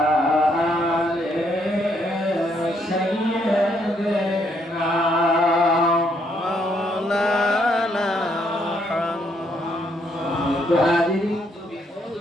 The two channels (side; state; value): both; normal; correlation 0.72